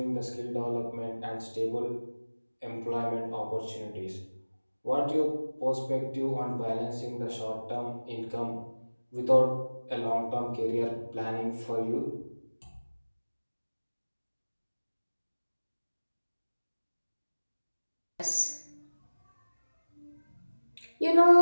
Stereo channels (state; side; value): inverted; both; correlation -1.00